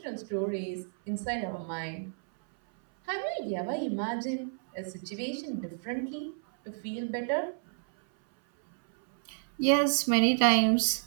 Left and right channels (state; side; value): silent; left; 58 dB below the other